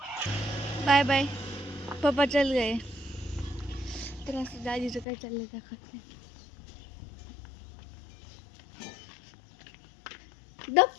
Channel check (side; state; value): right; drops out; at 5.1 s